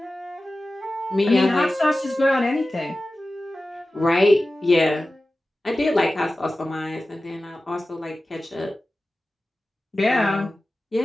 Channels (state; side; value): normal; both; correlation 0.95